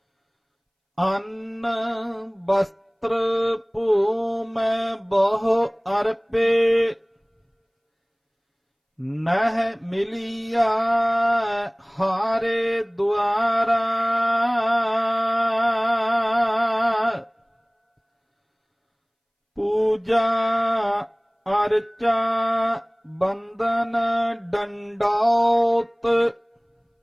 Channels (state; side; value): identical; both; correlation 1.00